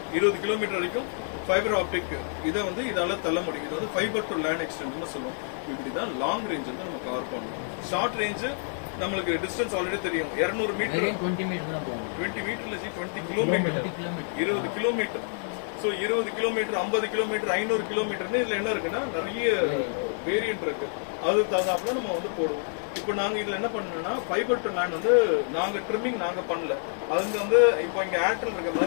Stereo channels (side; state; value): right; silent; digital silence